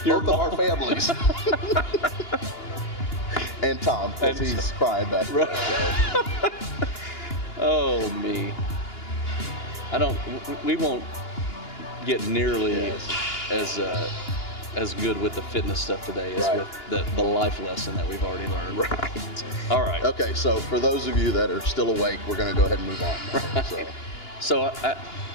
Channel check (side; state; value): right; late; 2.9 ms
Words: Your both of our mom. families. And Tom, because And he's crying back there. Right. Oh me. We won't get nearly Yes. as good with the fitness stuff today as Right. with the life lesson that we've already learned. Right. All right. Okay, so for those of you that are still awake, we're going to go ahead and move on. Now. So, So